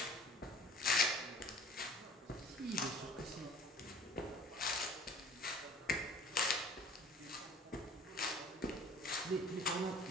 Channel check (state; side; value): normal; both; correlation 0.48